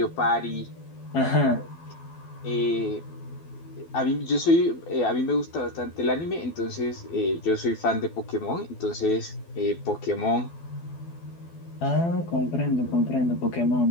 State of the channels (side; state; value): right; late; 12 ms